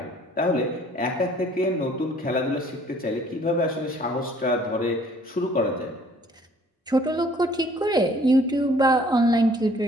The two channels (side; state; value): both; normal; correlation 0.57